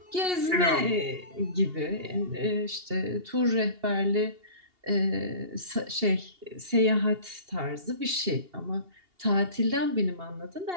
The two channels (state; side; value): late; left; 2.8 ms